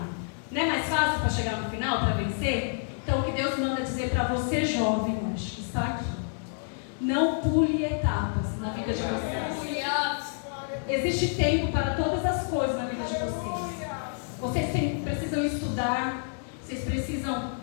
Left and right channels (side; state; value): right; silent; digital silence